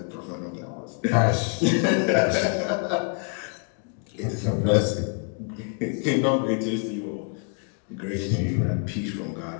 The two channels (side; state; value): right; quieter; 38.0 dB